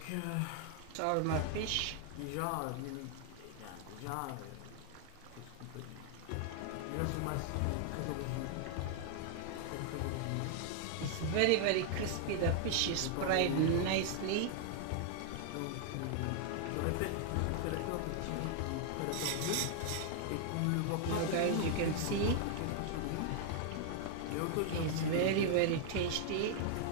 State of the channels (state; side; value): different; both; correlation 0.00